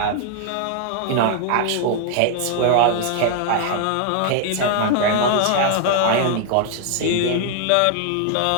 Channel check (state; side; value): different; both; correlation 0.00